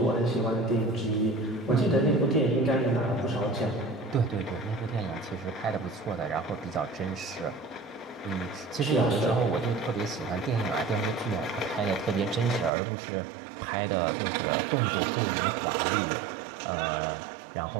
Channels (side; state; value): left; drops out; at 12.7 s